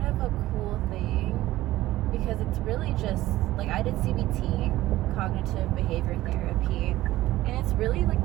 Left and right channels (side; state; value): left; quieter; 16.1 dB